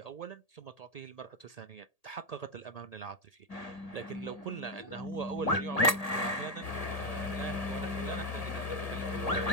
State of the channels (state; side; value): late; right; 1.8 ms